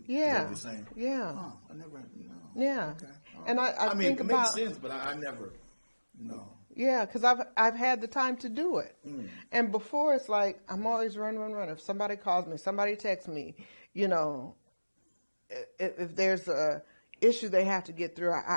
Yeah. Is that what you're saying? Yeah. Oh, I never, no. Yeah. Okay. All And right. I mean, think it makes about- sense, but I never, no. Yeah, because I've had the time to do it. And before it's like I'm always run. If somebody calls me, somebody texts me, if there's a issue they have to get through,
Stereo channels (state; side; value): inverted; both; correlation -1.00